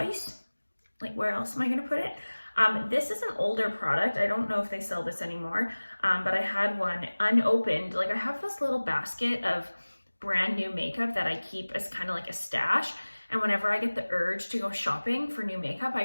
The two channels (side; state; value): both; inverted; correlation -1.00